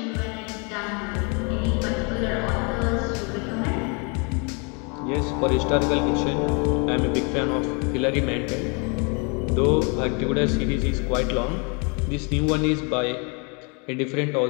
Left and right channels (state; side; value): quieter; right; 33.5 dB